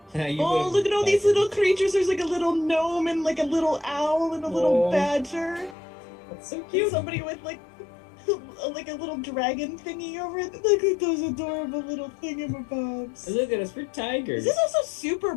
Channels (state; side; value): drops out; right; at 5.8 s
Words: You Oh, would've look at all these liked it. little creatures. There's like a little gnome and like a little owl and a little Oh. badger. That's so And cute. somebody with like a little dragon thingy over it. Look at those adorable little thingamabobs. Look at us, we're tigers. This is also super